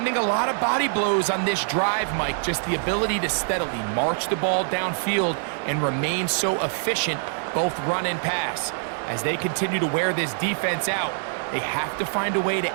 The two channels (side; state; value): left; silent; 62 dB below the other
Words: a lot of body blows on this drive, Mike. Just the ability to steadily march the ball downfield and remain so efficient, both run and pass. As they continue to wear this defense out, they have to find a way